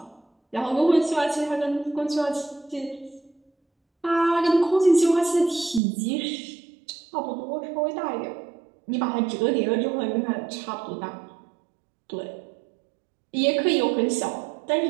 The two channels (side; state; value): left; drops out; at 5.8 s